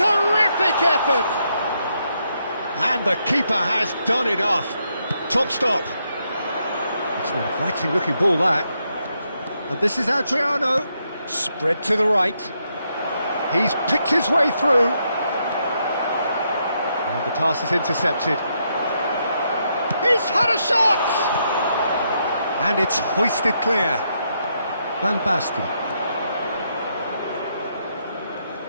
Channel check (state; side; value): inverted; both; correlation -0.78